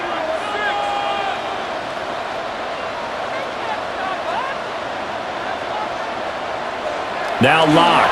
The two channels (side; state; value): both; identical; correlation 1.00